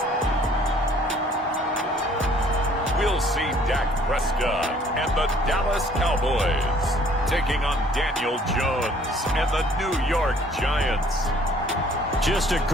We'll see Dak Prescott and the Dallas Cowboys taking on Daniel Jones and the New York Giants. Just a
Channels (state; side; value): normal; both; correlation 0.58